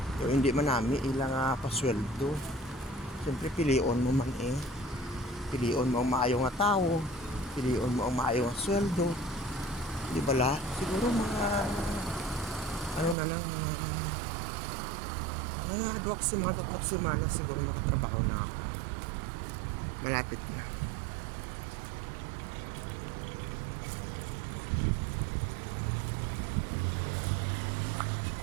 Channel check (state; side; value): drops out; left; at 13.2 s